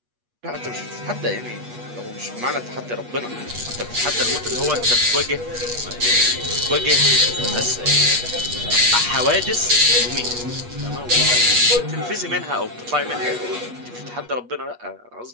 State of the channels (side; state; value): left; late; 8.3 ms